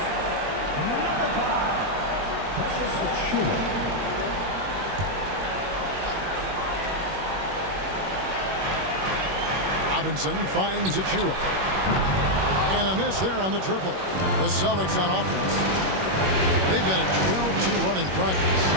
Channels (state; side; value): late; left; 21 ms